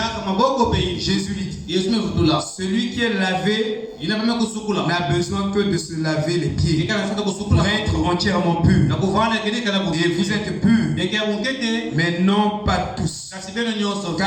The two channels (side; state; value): both; identical; correlation 1.00